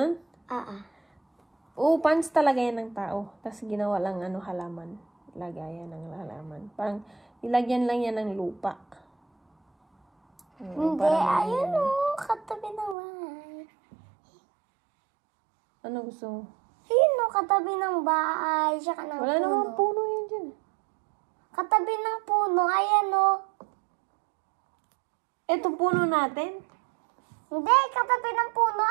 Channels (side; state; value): left; drops out; at 13.0 s